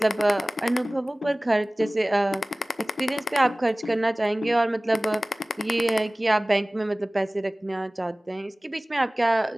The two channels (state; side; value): normal; both; correlation 0.98